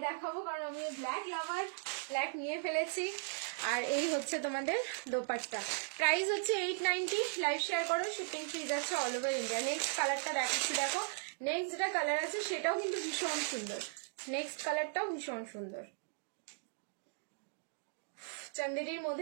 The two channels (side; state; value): left; silent; digital silence